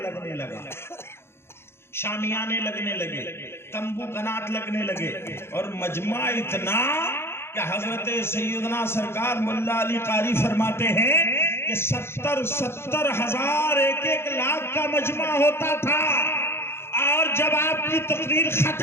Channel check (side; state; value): right; late; 0.12 ms